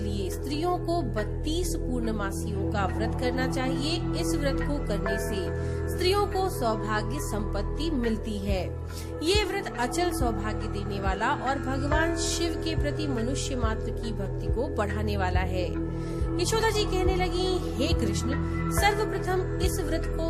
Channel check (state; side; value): identical; both; correlation 1.00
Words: स्त्रियों को 32 पूर्णमासियों का व्रत करना चाहिए। इस व्रत को करने से स्त्रियों को सौभाग्य संपत्ति मिलती है। ये व्रत अचल सौभाग्य देने वाला और भगवान शिव के प्रति मनुष्य मात्र की भक्ति को बढ़ाने वाला है। यशोदा जी कहने लगी, हे कृष्ण, सर्वप्रथम इस व्रत